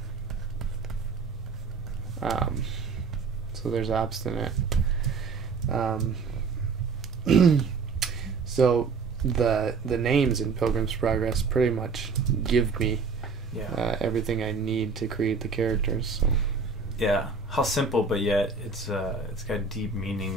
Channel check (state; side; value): quieter; left; 4.7 dB